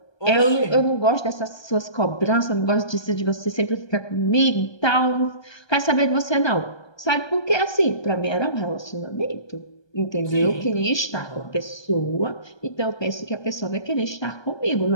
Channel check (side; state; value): right; late; 1.2 ms